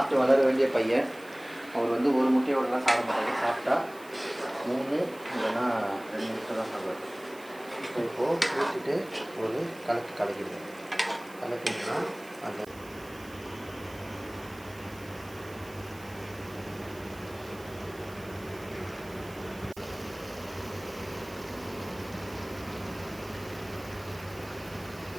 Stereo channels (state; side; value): noise; right; hiss, 21 dB below the sound